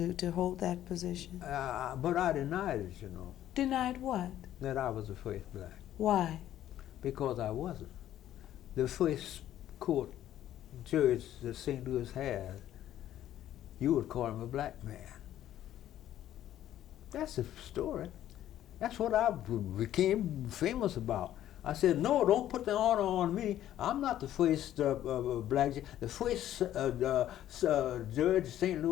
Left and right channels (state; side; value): quieter; right; 12.2 dB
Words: to hold that position? But I denied it, you know. Denied what? That I was the first black. Why? Because I wasn't. The first court judge that St. Louis had, you would call him a black man. That's the story. That's what I became famous about. I said, no, don't put the honor on me. I'm not the first black judge. The first judge St.